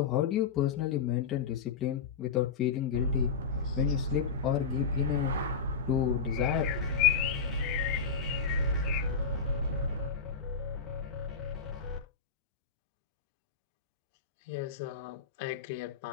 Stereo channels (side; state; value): right; quieter; 5.4 dB